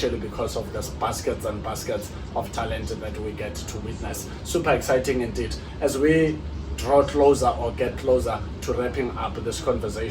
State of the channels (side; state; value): both; identical; correlation 1.00